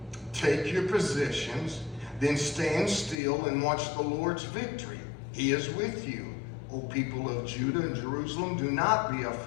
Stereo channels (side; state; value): right; drops out; at 3.2 s